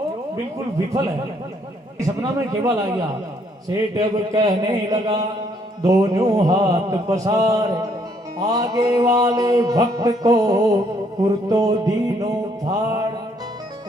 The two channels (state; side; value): normal; both; correlation 0.68